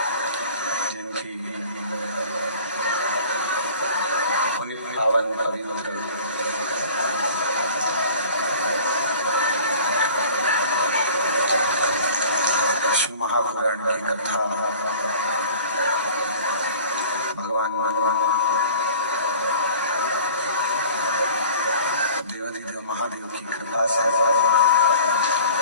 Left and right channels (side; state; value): both; inverted; correlation -0.45